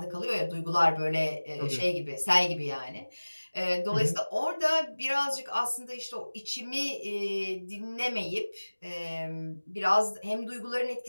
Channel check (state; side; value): inverted; both; correlation -1.00